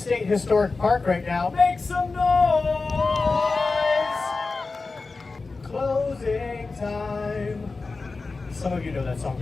Historic Park right now, make some noise! Closing time. Some of you know that song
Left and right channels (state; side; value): quieter; right; 3.9 dB